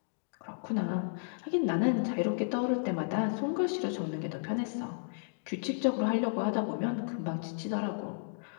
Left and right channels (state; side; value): silent; right; digital silence